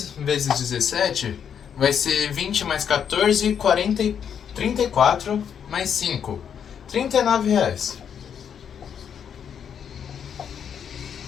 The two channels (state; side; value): quieter; right; 8.0 dB